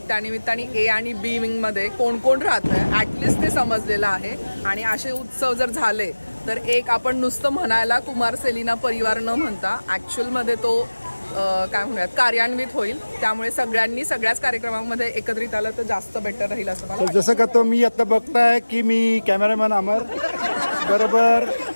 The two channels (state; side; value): inverted; both; correlation -1.00